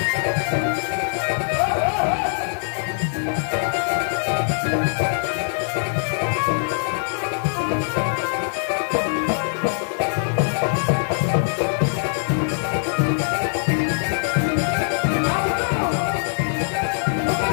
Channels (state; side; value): silent; right; digital silence